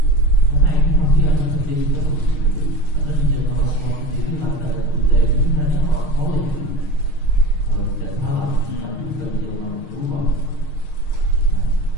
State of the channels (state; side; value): late; right; 6.5 ms